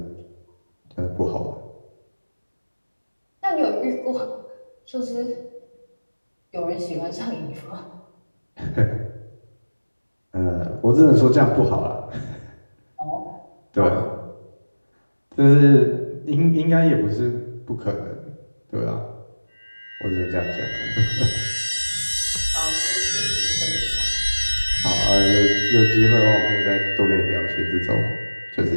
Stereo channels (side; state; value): both; inverted; correlation -1.00